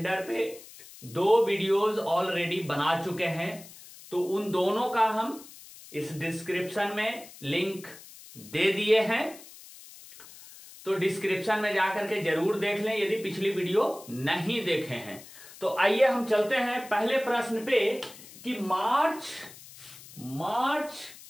पे 2 वीडियोस ऑलरेडी बना चुके हैं, तो उन दोनों का हम इस डिस्क्रिप्शन में लिंक दे दिए हैं, तो डिस्क्रिप्शन में जाकर के जरूर देख लें यदि पिछली वीडियो नहीं देखे हैं। तो आइए हम चलते हैं पहले प्रश्न पे कि मार्च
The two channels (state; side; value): noise; left; hiss, 18 dB below the sound